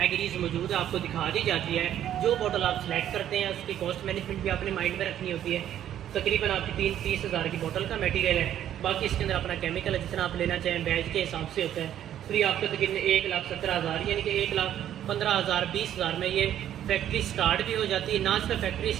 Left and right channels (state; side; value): quieter; left; 11.0 dB